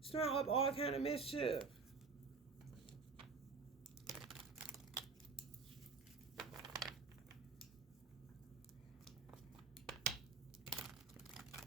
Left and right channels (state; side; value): quieter; left; 4.9 dB